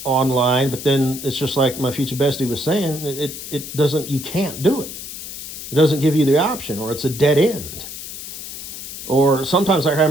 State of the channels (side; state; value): left; noise; hiss, 10 dB below the sound